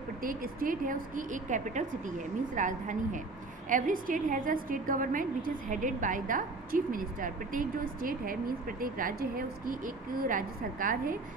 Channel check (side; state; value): left; quieter; 3.5 dB